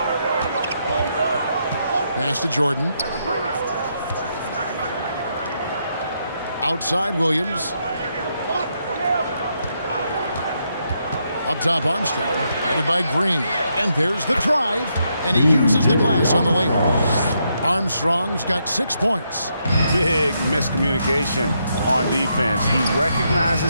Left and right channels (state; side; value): inverted; both; correlation -0.79